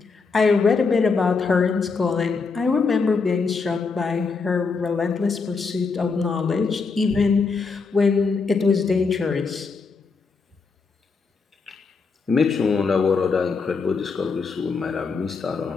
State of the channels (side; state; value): right; quieter; 4.7 dB